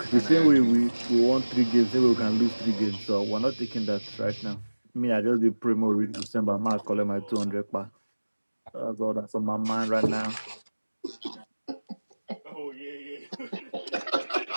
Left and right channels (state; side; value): inverted; both; correlation -1.00